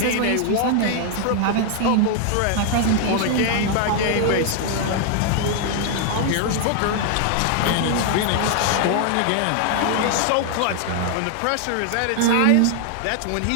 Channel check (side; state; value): both; different; correlation 0.00